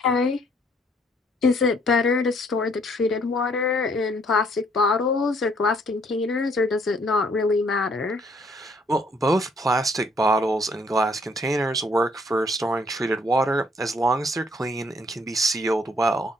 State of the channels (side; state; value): both; normal; correlation 0.65